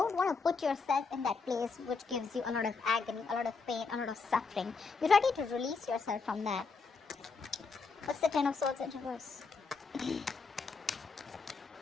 want to put yourself in that place which gives you a lot of agony, a lot of pain, a lot of suffering. You're ready to release yourself from that. What's the Ten of Swords in reverse?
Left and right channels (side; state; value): right; quieter; 4.6 dB